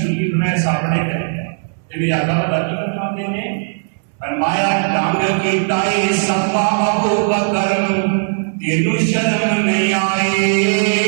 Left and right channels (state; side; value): silent; left; digital silence